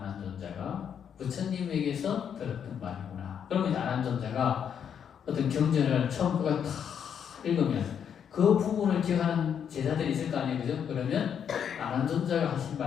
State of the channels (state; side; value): quieter; right; 8.1 dB